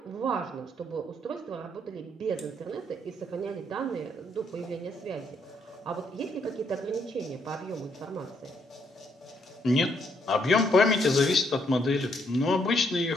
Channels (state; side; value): normal; both; correlation 0.72